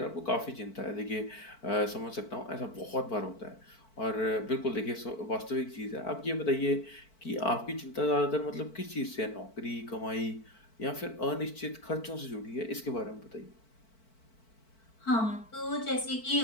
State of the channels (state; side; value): late; right; 4.5 ms